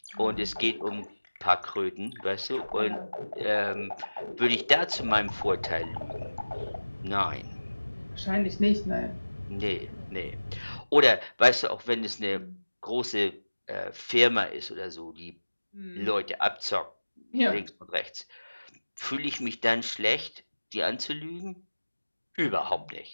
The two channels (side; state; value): both; inverted; correlation -1.00